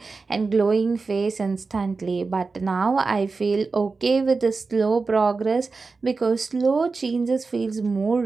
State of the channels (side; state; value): left; quieter; 4.2 dB